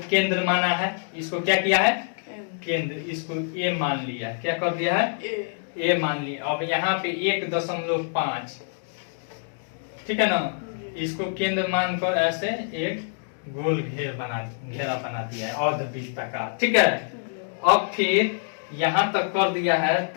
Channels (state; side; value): silent; right; digital silence